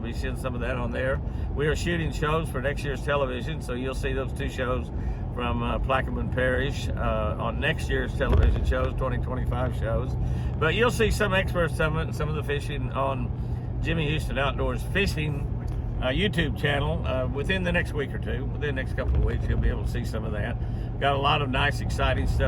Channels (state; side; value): identical; both; correlation 1.00